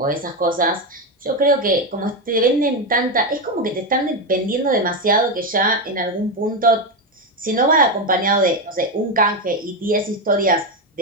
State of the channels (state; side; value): normal; both; correlation 0.10